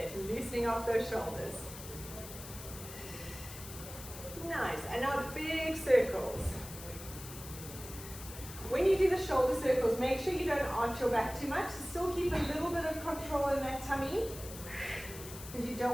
Loosening off those shoulders. Nice. And now big circles. When you do the shoulder circles, make sure you don't arch your back too much. Still keep a little bit of control in that tummy. Because you don't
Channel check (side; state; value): left; noise; hiss, 13 dB below the sound